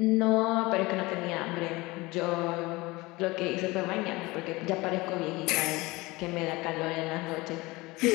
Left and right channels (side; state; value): right; quieter; 22.0 dB